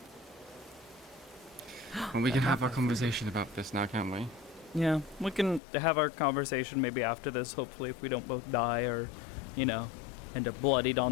Well, we can have our conversation about this now, can't we? Yeah, we can have our conversation maybe after this, hopefully, if we don't both die or, you know, end up bloodied on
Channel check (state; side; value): drops out; right; at 5.6 s